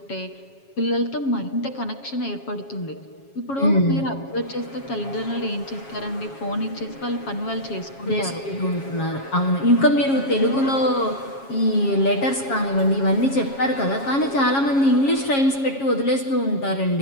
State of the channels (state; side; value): late; right; 7.3 ms